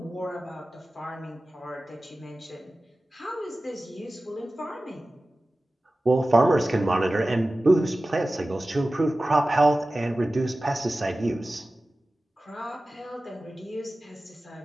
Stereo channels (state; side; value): normal; both; correlation 0.96